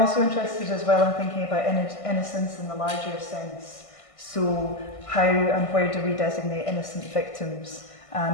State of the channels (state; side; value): late; right; 1.6 ms